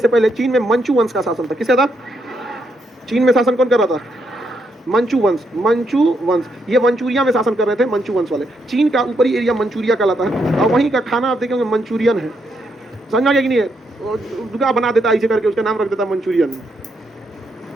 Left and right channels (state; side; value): normal; both; correlation 0.78